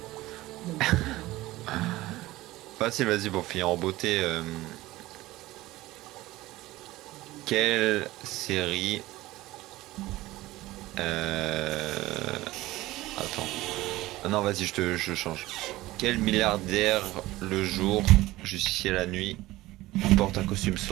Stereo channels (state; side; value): quieter; left; 17.8 dB